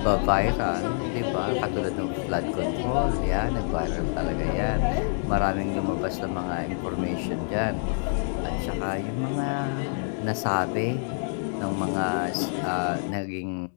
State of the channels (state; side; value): silent; right; digital silence